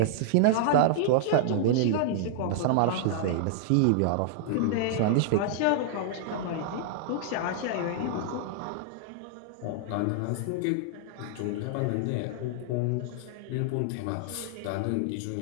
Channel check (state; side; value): different; both; correlation -0.01